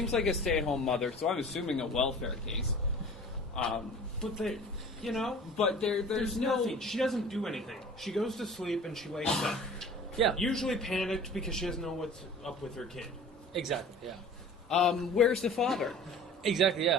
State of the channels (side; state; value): both; normal; correlation 0.43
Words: like a stay-at-home mother, so I'm assuming a welfare case. But But there's no. nothing. She doesn't do anything. She goes to sleep and she wakes up. Yeah. Usually panicked because she doesn't know what's up with her kid. Exactly. Yeah. Where's the father? Exactly.